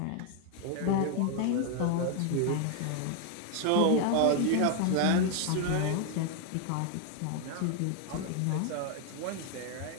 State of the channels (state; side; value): different; both; correlation 0.01